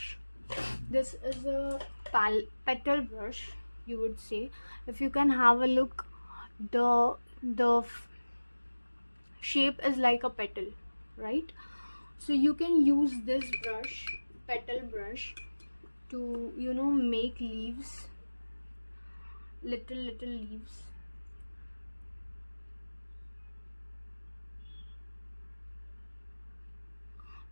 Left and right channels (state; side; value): inverted; both; correlation -1.00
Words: This is a petal brush, you would say. If you can have a look, the shape is like a petal, right? So you can use this brush, petal brush, to make leaves, little leaves.